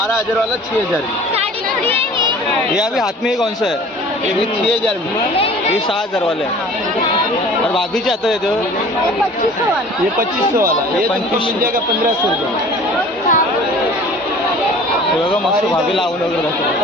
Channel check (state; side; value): normal; both; correlation 0.46